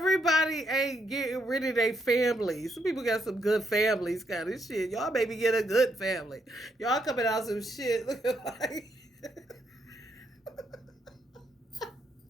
ain't getting rid of their families. Some people got some good families, kind of shit. Y'all maybe get a good family. Y'all coming out some shit looking like.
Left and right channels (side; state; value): both; normal; correlation 0.76